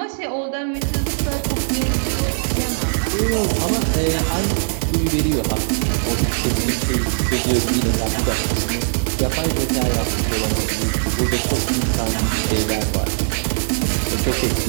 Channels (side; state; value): left; silent; 62 dB below the other